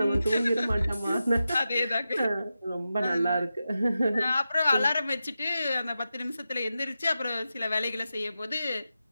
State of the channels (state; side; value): inverted; both; correlation -0.91